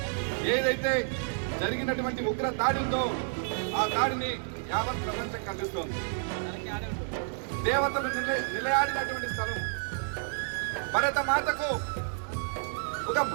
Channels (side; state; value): left; silent; digital silence